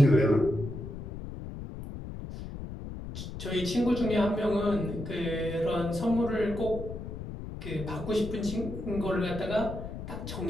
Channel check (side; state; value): left; noise; rumble, 9 dB below the sound